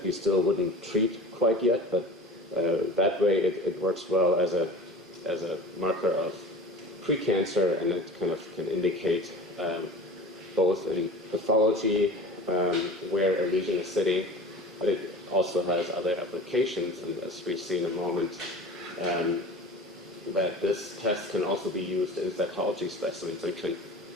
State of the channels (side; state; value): both; normal; correlation 0.38